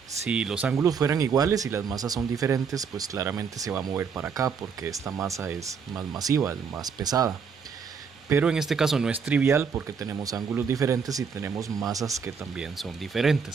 Si los ángulos fueran iguales y las masas son diferentes, pues claramente se va a mover para acá porque esta masa es más masiva, es más pesada. Pero en este caso no es trivial porque tenemos ángulos diferentes y tenemos masas que también son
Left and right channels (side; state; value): left; quieter; 6.1 dB